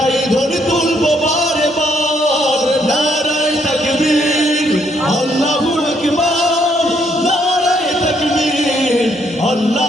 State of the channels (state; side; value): normal; both; correlation 0.71